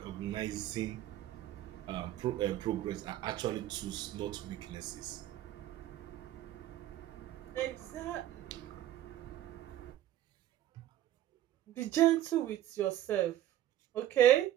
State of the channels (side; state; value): left; quieter; 12.8 dB